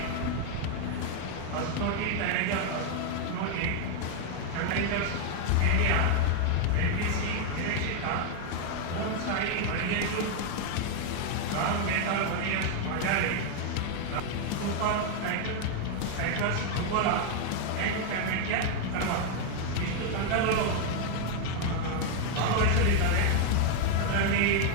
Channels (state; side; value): different; both; correlation 0.00